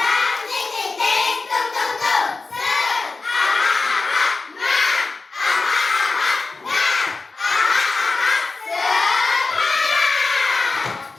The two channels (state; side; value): quieter; right; 3.8 dB